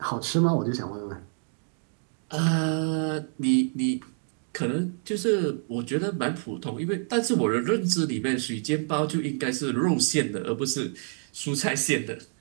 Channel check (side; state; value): left; silent; 60 dB below the other